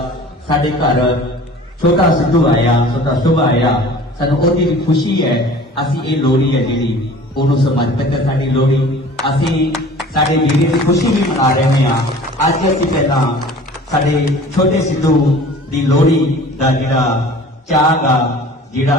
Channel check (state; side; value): normal; both; correlation 0.45